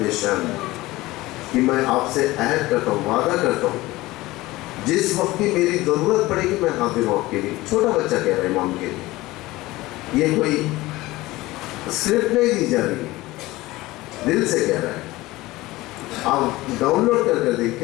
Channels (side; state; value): right; quieter; 19.0 dB